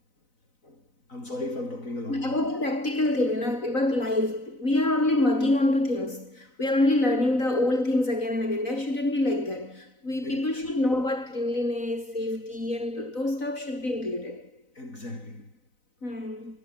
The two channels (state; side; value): late; right; 4.0 ms